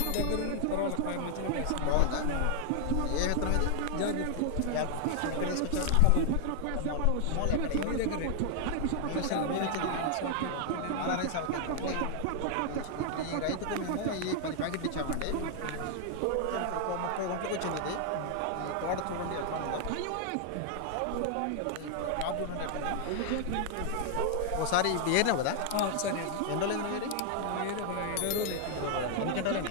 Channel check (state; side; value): different; both; correlation 0.00